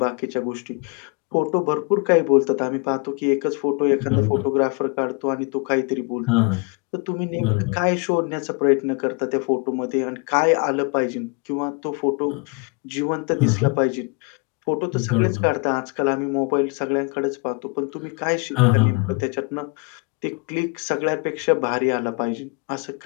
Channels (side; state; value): right; quieter; 31.5 dB